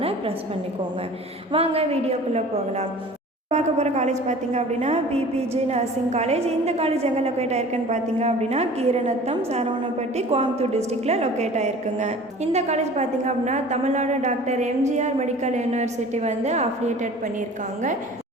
ப்ரெஸ் பண்ணிக்கோங்க. வாங்க வீடியோக்குள்ளே போகலாம். பார்க்க போகிற காலேஜ் பார்த்திங்க அப்படின்னா பிபிஜி நர்சிங் காலேஜ். இந்த காலேஜ் எங்கே லொக்கேட் ஆயிருக்குன்னு பார்த்திங்க அப்படின்னா கீரநத்தம், சரவணப்பட்டி, கோயம்புத்தூர் டிஸ்ட்ரிக்டில் லொக்கேட் ஆயிருக்குங்க. இந்த காலேஜ் பார்த்திங்க அப்படின்னா Tamil Nadu doctor MGR medical university affiliated பண்ணியிருக்காங்க.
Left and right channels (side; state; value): both; normal; correlation 0.44